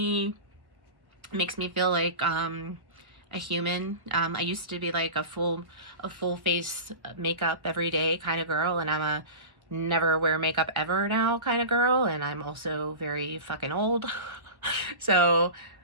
makes me feel like a human. I used to be like a full face makeup every day kind of girl, and I'm a never wear makeup ever now kind of girl, and I'm also very fucking old. So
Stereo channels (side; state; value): left; late; 1.1 ms